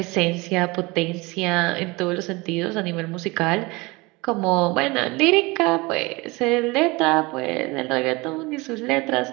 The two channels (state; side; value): quieter; left; 24.2 dB